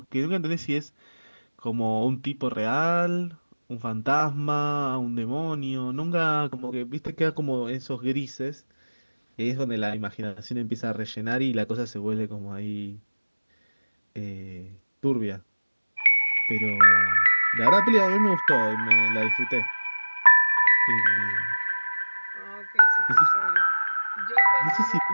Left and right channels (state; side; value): inverted; both; correlation -1.00